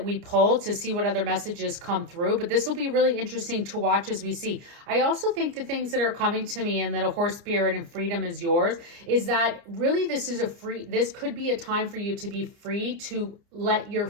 we pull to see what other messages come through. But this will be really interesting to watch as we see. I also think the things that are coming to me and that a horse spirit and freedom is yours is that really this could be a time for you to be free to let your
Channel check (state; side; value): late; left; 30 ms